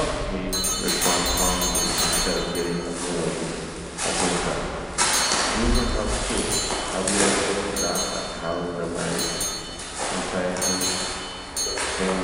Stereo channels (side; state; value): both; identical; correlation 1.00